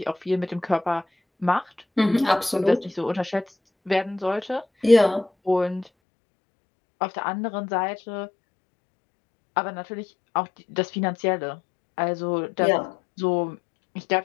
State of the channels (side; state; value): right; drops out; at 5.9 s